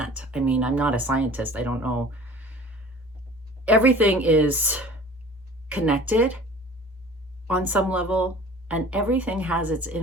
I mean, I'm not a scientist. I don't know. Everything is connected on some level, and everything has its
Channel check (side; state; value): both; normal; correlation 0.45